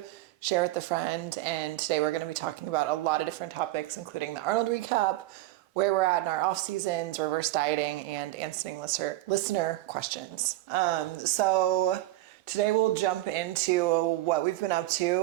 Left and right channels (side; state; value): left; quieter; 17.2 dB